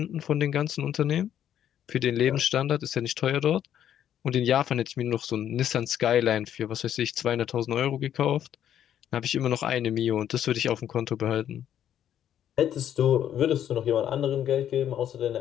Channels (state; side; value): quieter; right; 10.3 dB